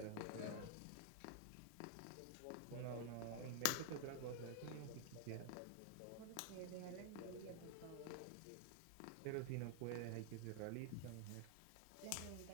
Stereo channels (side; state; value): both; different; correlation 0.00